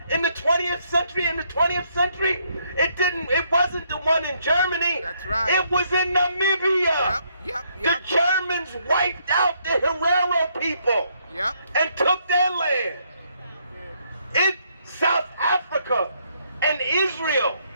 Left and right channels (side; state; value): both; inverted; correlation -0.72